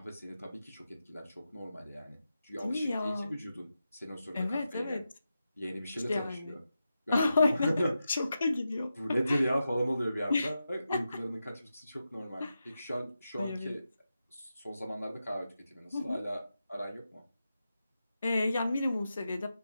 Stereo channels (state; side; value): inverted; both; correlation -0.90